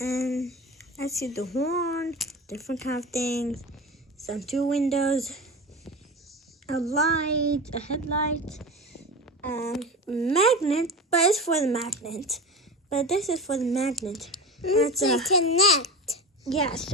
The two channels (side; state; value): both; normal; correlation 0.29